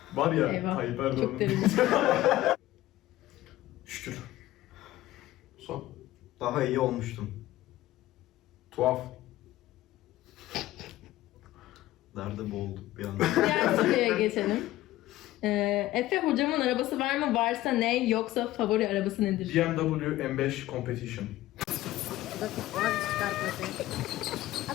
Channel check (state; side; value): quieter; right; 15.9 dB